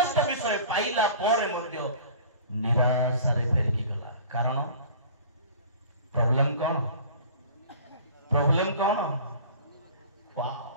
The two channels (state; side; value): inverted; both; correlation -0.44